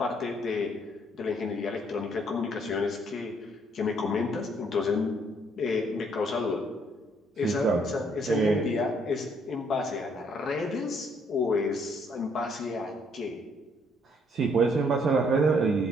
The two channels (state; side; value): normal; both; correlation 0.68